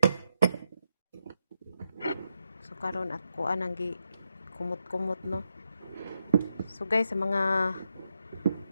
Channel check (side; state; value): both; inverted; correlation -0.83